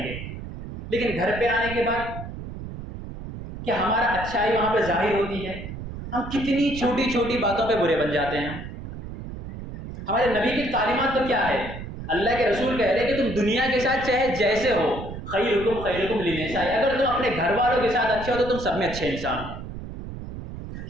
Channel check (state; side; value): noise; right; rumble, 9 dB below the sound